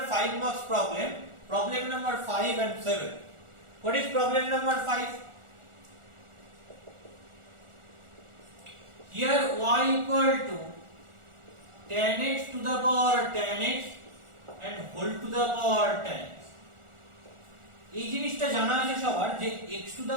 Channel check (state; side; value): late; left; 1.4 ms